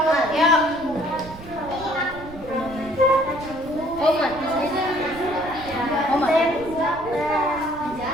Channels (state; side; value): noise; right; rumble, 16 dB below the sound